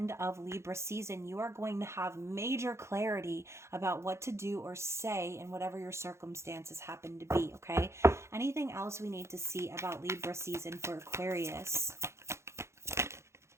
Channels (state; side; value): late; left; 0.13 ms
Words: of Libra season, you are going to have major clarity about what to do or say in whatever your circumstances happen to be, okay? Anything else we need to see about Libra season for Aquarius?